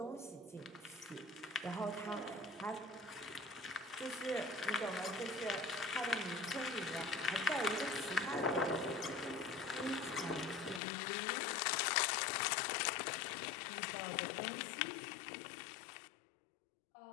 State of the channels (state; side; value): drops out; right; at 10.8 s